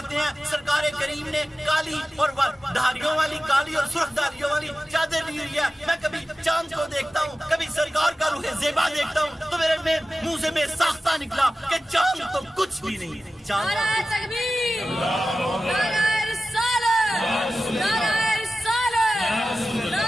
ہیں سرکار کریم نے کالی اور دھاریوں والی, کالی اور سرخ دھاریوں والی چادر لی ہوئی ہے. میں کبھی چاند کو دیکھتا ہوں, کبھی سرکار کا روح زیبا دیکھتا ہوں, تو میرے منہ سے میں ساختہ نکلا کہ چاند تو کچھ بھی نہیں. چاند نعرہ تکبیر, نعرہ رسالت, نعرہ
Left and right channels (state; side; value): normal; both; correlation 0.94